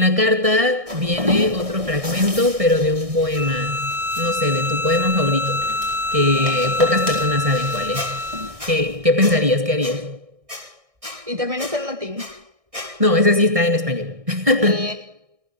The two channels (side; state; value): left; late; 1.6 ms